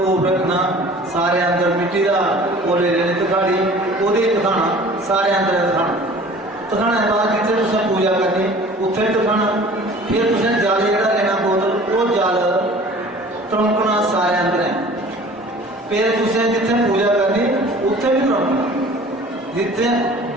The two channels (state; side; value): normal; both; correlation 0.46